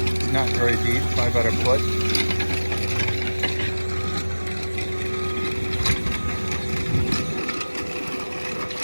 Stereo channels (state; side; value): inverted; both; correlation -1.00